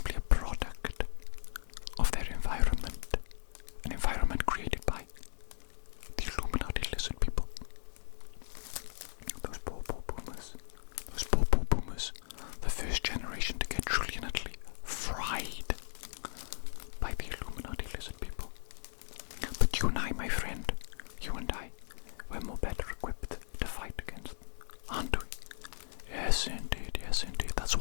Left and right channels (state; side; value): silent; right; digital silence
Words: a product of their environment, an environment created by the Illuminati lizard people. Those poor boomers, the first generation to get truly and utterly fried by the Illuminati lizard people. But you and I, my friend, you and I, we're more better equipped to fight against them, aren't we? Yes, indeed, yes, indeed. That's